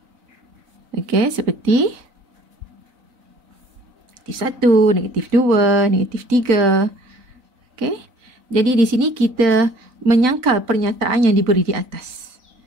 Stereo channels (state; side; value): late; left; 3.9 ms